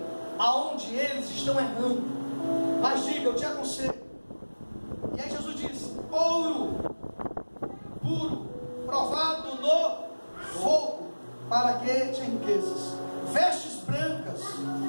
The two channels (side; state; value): both; inverted; correlation -1.00